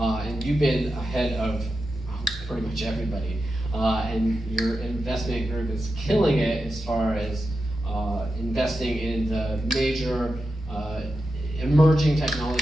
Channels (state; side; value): normal; both; correlation 0.89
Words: you've been ahead of pretty much everybody. And your investment group is killing it as far as investing in the major emerging